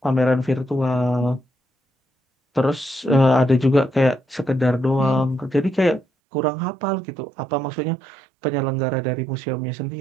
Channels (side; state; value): left; drops out; at 6.1 s